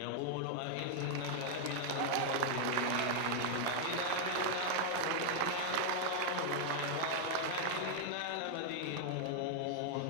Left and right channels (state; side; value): different; both; correlation 0.00